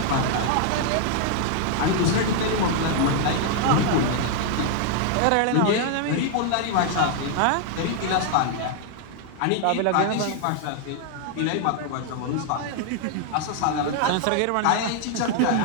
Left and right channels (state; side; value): different; both; correlation 0.00